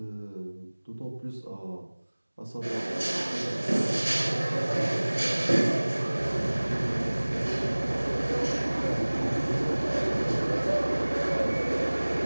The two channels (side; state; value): both; inverted; correlation -1.00